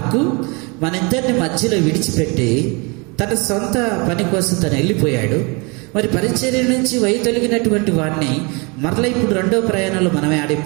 మన ఇద్దరిని మధ్యలో విడిచిపెట్టి తన సొంత పని కోసం తను వెళ్ళిపోయాడు. మరి పరిచర్య నుంచి వైదొలిగినటువంటి వాడిని మరలా ఇప్పుడు రెండవ ప్రయాణంలో మనమే ఆడ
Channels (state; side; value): quieter; left; 29.7 dB